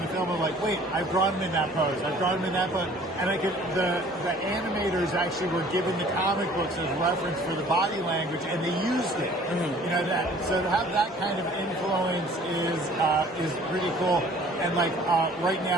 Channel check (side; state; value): both; normal; correlation 0.52